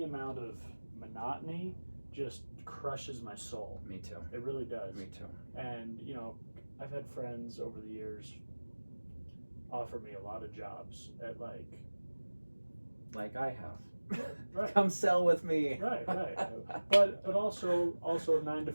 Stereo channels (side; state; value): both; inverted; correlation -1.00